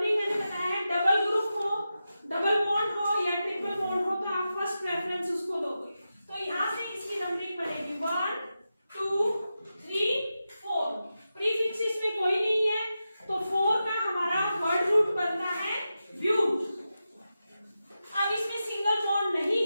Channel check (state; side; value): inverted; both; correlation -0.91